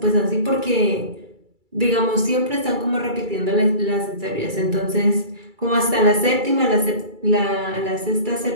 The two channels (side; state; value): left; late; 2.3 ms